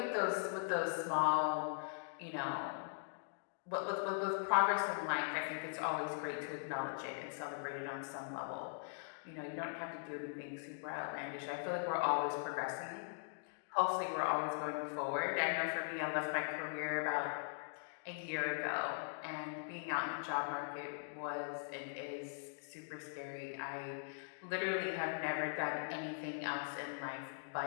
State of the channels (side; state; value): right; silent; digital silence